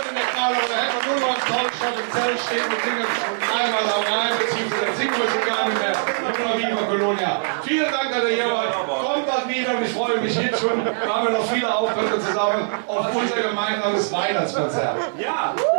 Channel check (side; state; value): left; silent; 62 dB below the other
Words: der Karneval, da hätte man nur noch ein tolles Schott im Zelt stehen und singen einmal am Rhein, beziehungsweise dann singen wir schon gar nicht mehr. Nur noch Viva Colonia. Vielen Dank, dass ihr hier wart. Kommt bald wieder und ich freue mich jetzt schon. Wir haben noch viele Auftritte zusammen auf unser gemeinsames Weihnachtskonzert. Ja!